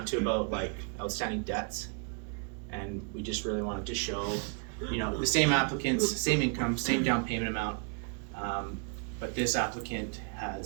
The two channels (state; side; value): quieter; left; 39.2 dB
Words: to about like outstanding debts, and we just really wanted to show, the same applicants, same income, same down payment amount, but this applicant